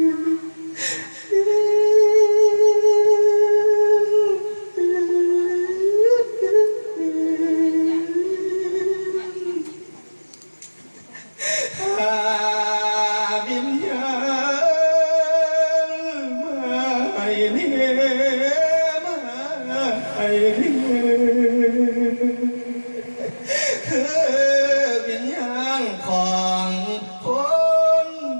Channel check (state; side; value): inverted; both; correlation -1.00